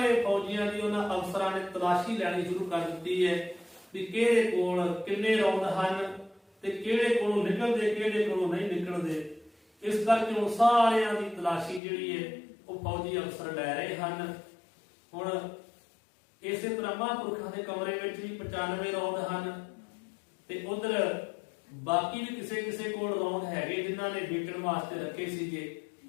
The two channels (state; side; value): drops out; right; at 11.8 s